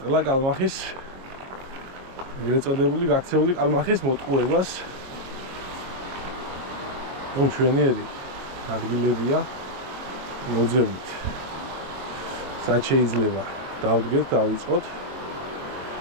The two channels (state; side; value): late; left; 23 ms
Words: კალმახის ეგრეთ წოდებული გაქცეული კალმახის მოტყუებას. ჩვენიერი ადგილებია მოძებნით. სად შეიძლება დავდგეთ, დავიწყოთ.